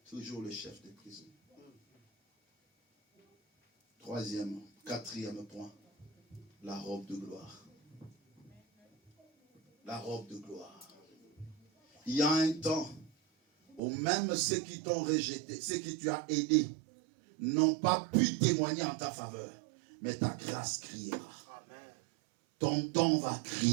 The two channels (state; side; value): drops out; left; at 13.8 s